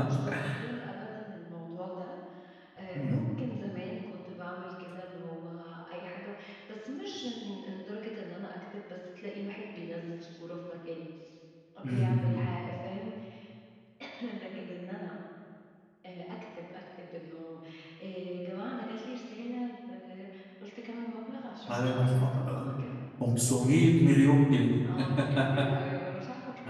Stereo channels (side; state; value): both; identical; correlation 1.00